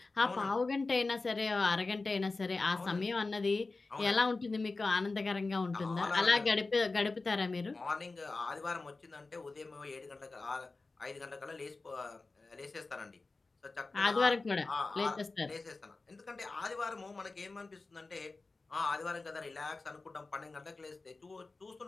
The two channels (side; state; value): right; quieter; 3.6 dB